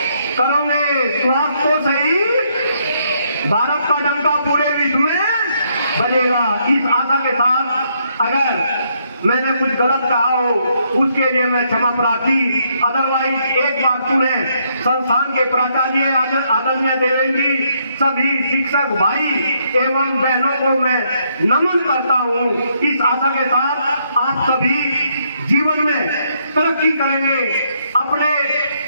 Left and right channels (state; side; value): inverted; both; correlation -0.73